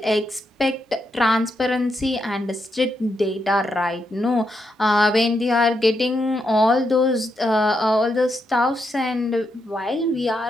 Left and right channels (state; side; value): normal; both; correlation 0.82